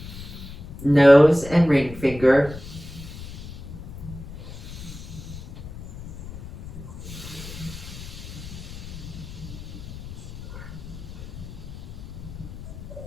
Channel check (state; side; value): noise; left; rumble, 12 dB below the sound